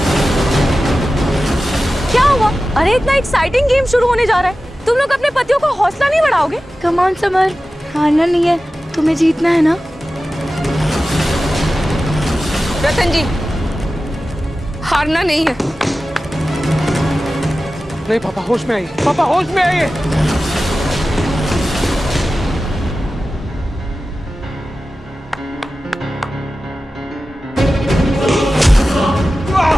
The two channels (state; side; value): normal; both; correlation 0.95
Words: क्या हुआ? अरे इतना एक्साइटिंग गेम शुरू होने जा रहा है, तुम लोग अपने पतियों का हौसला नहीं बढ़ाओगे? कम ऑन समर, हारना नहीं है, तुम्हें जीतना है ना। रतन जी, हारना नहीं है। नहीं पापा, होश में आइए। पापा, होश में आइए।